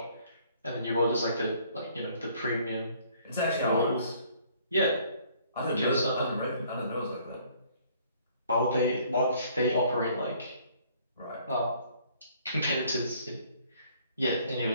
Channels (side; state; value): both; inverted; correlation -0.60